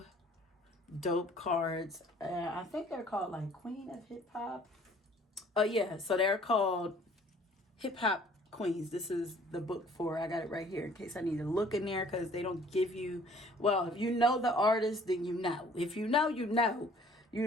dope cards. I think they're called like Queen of Hip Hop. Oh yeah, so they're called Hip Hop Queens. This is the book for, I got it right here in case I need to look in there, because they don't give you, well, if you know the artist, then you know. If you know, you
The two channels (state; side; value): normal; both; correlation 0.55